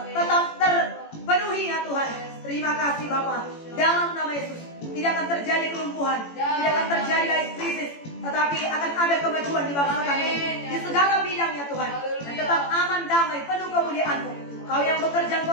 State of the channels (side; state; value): right; late; 18 ms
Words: tetap terpenuhi ya Tuhan. Terima kasih Bapa. Dalam nama Yesus tidak akan terjadi kelumpuhan, tidak akan terjadi lagi krisis, tetapi akan ada kemajuan di bangsa kami di segala bidang ya Tuhan. Dan tetap aman, damai, penuh kemuliaan-Mu. Kau yang bekerja,